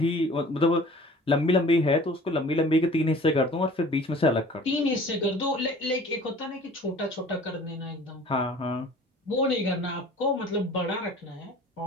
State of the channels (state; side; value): normal; both; correlation 0.46